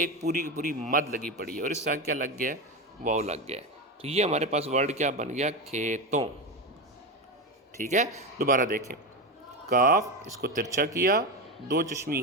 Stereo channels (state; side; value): normal; both; correlation 0.17